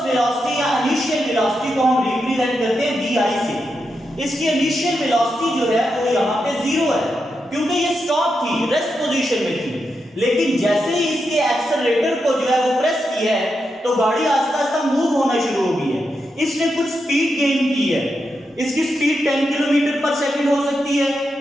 वेलोसिटी या इनिशियल वेलोसिटी को हम रिप्रेजेंट करते हैं vi से। इसकी इनिशियल वेलोसिटी जो है वो यहाँ पे 0 है क्योंकि ये स्टॉप थी, रेस्ट पोजीशन में थी। लेकिन जैसे ही इसके एक्सेलरेटर को जो है वो प्रेस किया है तो गाड़ी आहिस्ता आहिस्ता मूव होना शुरू हो गई है। इसने कुछ स्पीड गेन की है। इसकी स्पीड 10 किलोमीटर पर सेकंड हो सकती है,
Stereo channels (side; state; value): both; normal; correlation 0.86